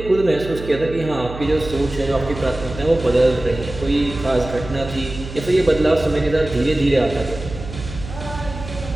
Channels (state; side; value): noise; right; hum, 11 dB below the sound